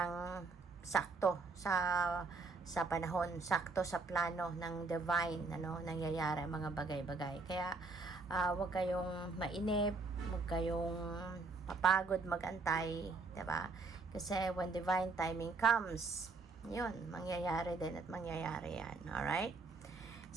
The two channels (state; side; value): quieter; left; 3.9 dB